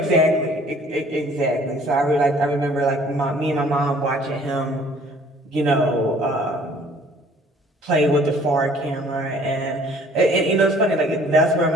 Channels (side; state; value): both; normal; correlation 0.55